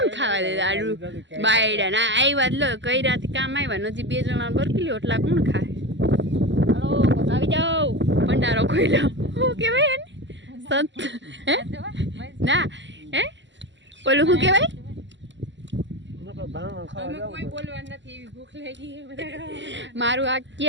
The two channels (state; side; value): late; left; 0.54 ms